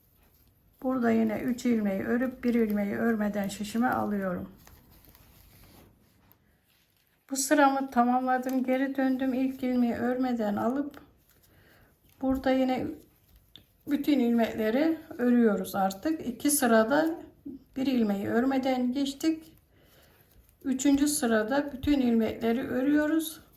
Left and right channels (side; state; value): both; identical; correlation 1.00